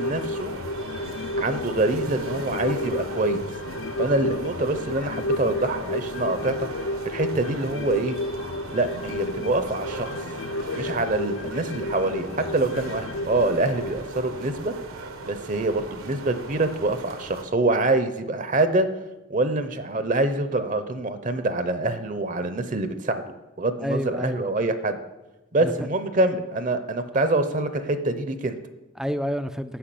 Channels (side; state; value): both; normal; correlation 0.14